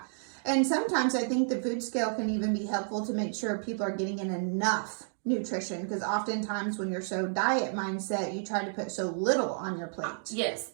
And sometimes I think the food scale can even be helpful to make sure people are getting in enough nutrition, because oftentimes when you're so diet mindset, you try to put so little on your plate. Yes,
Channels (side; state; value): left; silent; digital silence